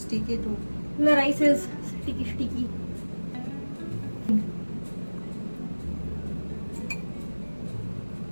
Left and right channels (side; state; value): both; inverted; correlation -1.00